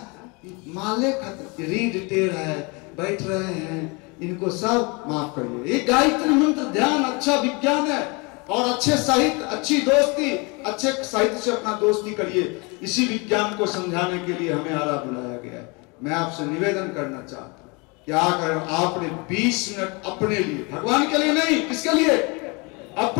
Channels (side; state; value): right; quieter; 29.1 dB